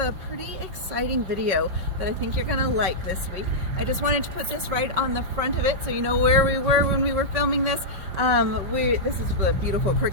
a pretty exciting video that I think you're gonna like this week. I just wanted to put this right on the front of it so you know where we were when we were filming this. This is the beautiful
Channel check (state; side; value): late; left; 5.3 ms